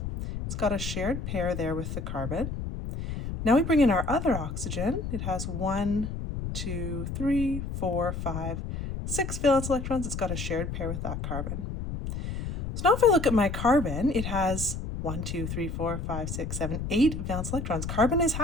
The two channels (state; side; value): noise; left; rumble, 5 dB below the sound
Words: It's got a shared pair there with the carbon. Now we bring in our other oxygen. It has 1, 2, 3, 4, 5, 6 valence electrons. It's got a shared pair with that carbon. So now if I look at my carbon, it has 1, 2, 3, 4, 5, 6, 7, 8 valence electrons. Carbon is